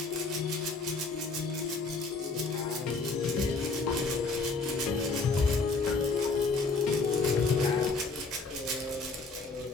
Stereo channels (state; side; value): quieter; right; 4.0 dB